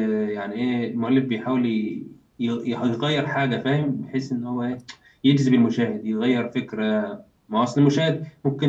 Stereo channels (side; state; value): both; identical; correlation 1.00